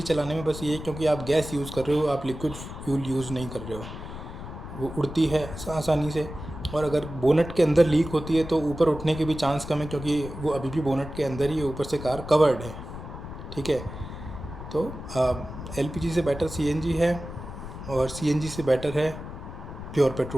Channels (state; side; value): noise; left; rumble, 10 dB below the sound